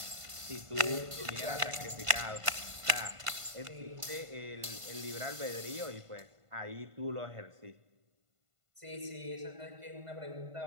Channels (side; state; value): left; late; 1.5 ms